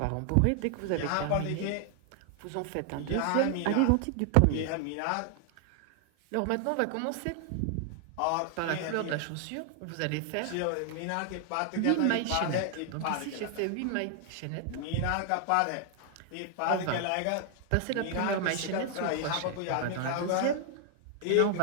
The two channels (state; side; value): different; both; correlation 0.00